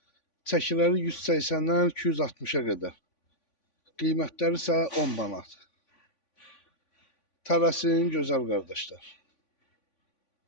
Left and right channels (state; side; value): late; right; 3.5 ms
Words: Çəkiləri 180-dən 260-a qədər. Qiymətləri isə 10 manat. Tələsin gözəl qardaşlar.